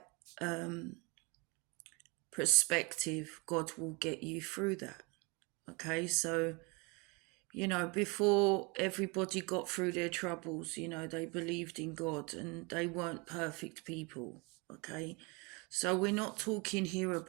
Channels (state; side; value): quieter; left; 29.1 dB